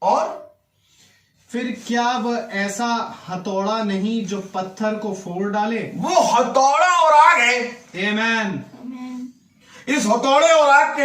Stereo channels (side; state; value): both; identical; correlation 1.00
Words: और फिर क्या वह ऐसा हथौड़ा नहीं जो पत्थर को फोड़ डाले? वो हथौड़ा और आग है। आमीन। इस हथौड़े और आग